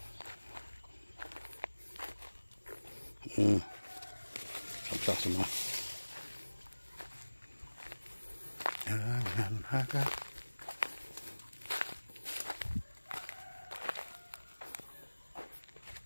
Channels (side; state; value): both; inverted; correlation -1.00